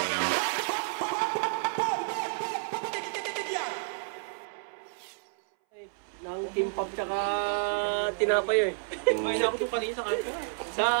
Nang kimpap tsaka tinapay eh. Kumain ako doon kanina sa kanto. Sa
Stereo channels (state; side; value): silent; left; 58 dB below the other